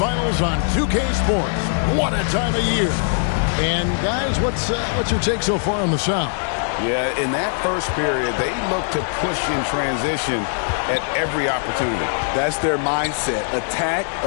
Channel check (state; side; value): silent; right; 65 dB below the other